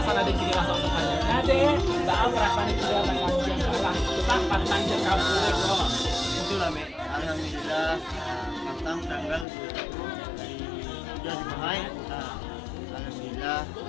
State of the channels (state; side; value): drops out; right; at 9.5 s